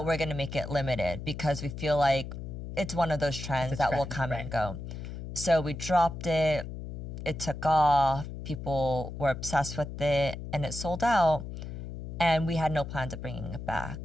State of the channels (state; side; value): noise; left; hum, 8 dB below the sound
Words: we're going to make it limited because we feel like it's one of those trends that will come and go. So we dropped it. It took off. People were obsessed with it, and it sold out. And we had no plans of bringing it